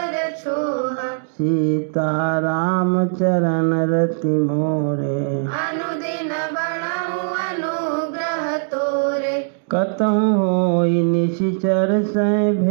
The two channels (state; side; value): silent; left; digital silence